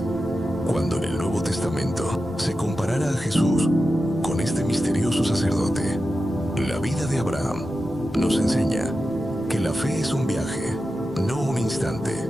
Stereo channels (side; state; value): both; normal; correlation 0.91